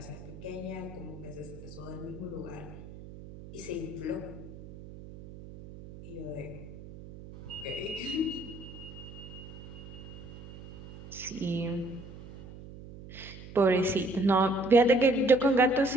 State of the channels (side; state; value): right; noise; hum, 15 dB below the sound